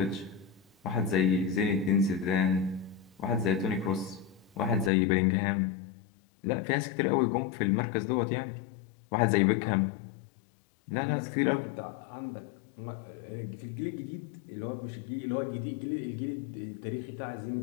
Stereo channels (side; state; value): right; drops out; at 4.9 s